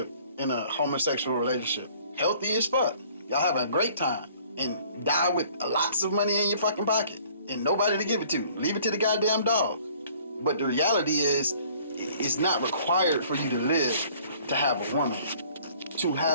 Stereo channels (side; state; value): both; inverted; correlation -0.55